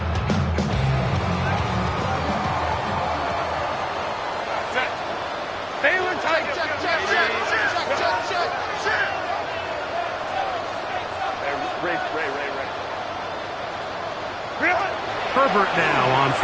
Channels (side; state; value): both; identical; correlation 1.00